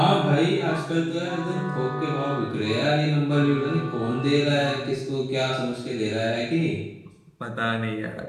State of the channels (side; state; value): both; identical; correlation 1.00